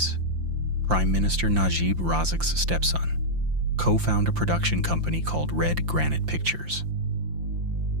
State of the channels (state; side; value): late; left; 5.8 ms